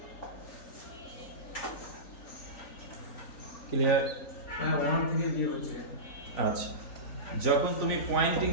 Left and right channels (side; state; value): right; late; 3.9 ms